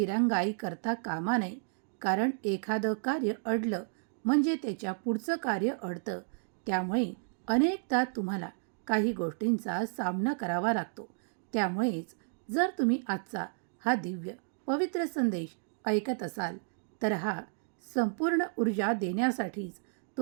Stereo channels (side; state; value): left; silent; digital silence